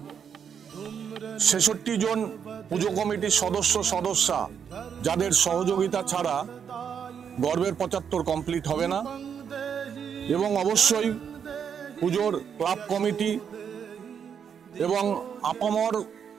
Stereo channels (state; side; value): quieter; left; 7.5 dB